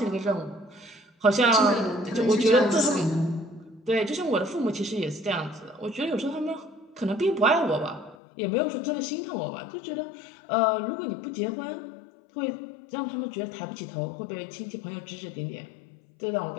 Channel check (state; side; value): drops out; right; at 8.2 s